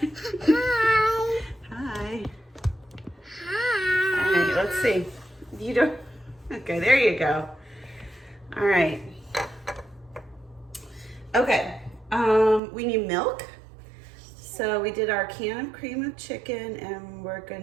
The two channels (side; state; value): left; drops out; at 12.6 s